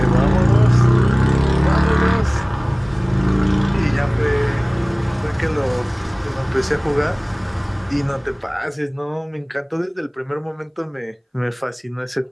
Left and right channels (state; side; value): identical; both; correlation 1.00